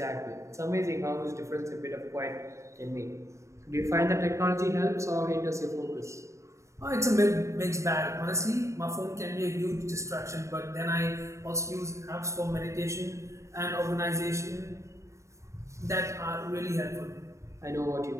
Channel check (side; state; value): left; late; 0.14 ms